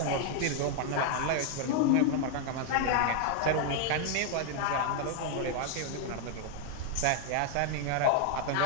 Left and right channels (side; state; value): both; different; correlation 0.00